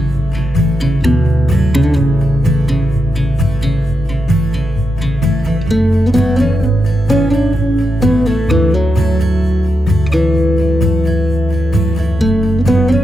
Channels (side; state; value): both; normal; correlation 0.86